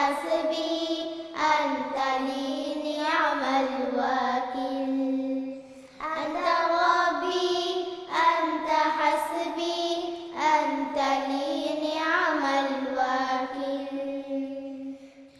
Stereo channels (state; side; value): identical; both; correlation 1.00